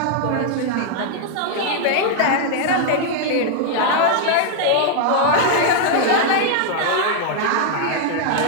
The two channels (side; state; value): both; different; correlation 0.00